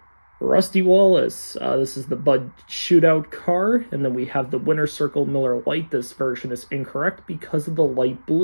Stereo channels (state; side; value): inverted; both; correlation -1.00